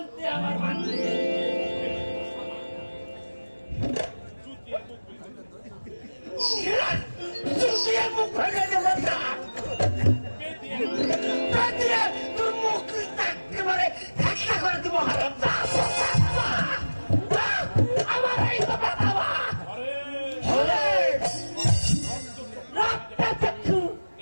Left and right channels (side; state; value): both; inverted; correlation -1.00